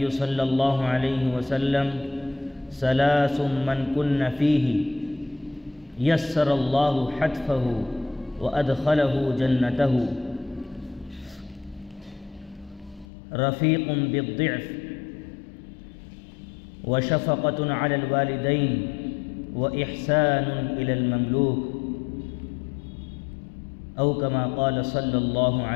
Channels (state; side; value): drops out; right; at 13.1 s